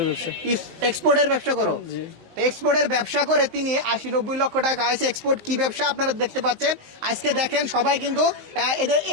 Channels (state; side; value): late; left; 19 ms